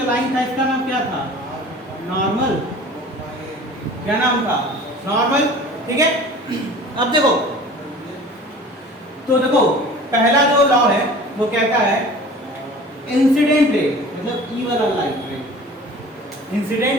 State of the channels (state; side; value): normal; both; correlation 0.43